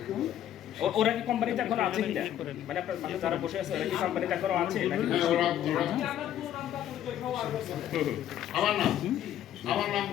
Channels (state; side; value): quieter; right; 11.2 dB